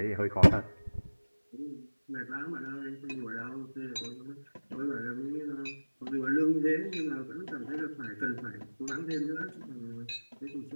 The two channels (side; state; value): both; inverted; correlation -1.00